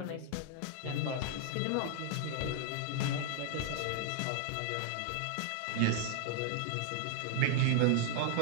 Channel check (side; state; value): both; different; correlation 0.00